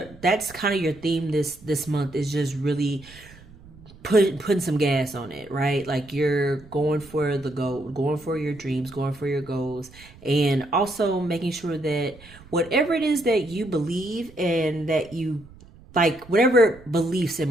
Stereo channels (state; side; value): noise; right; rumble, 22 dB below the sound